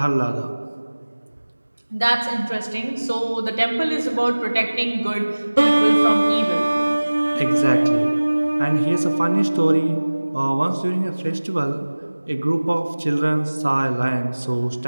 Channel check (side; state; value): both; inverted; correlation -1.00